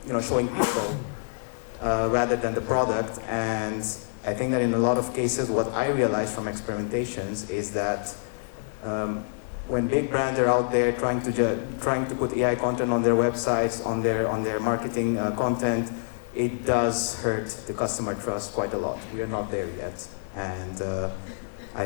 showing people rather than the product. And I think that in a lot of cases, what I realized from experimentations is that when big brands are out there trying to put AI content on their websites, on their marketing content, it does hurt the customer trust quite a lot. We are not there yet. And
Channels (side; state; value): right; silent; digital silence